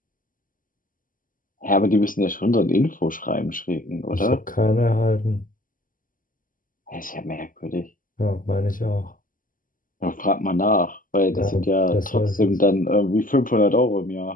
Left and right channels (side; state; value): right; late; 0.40 ms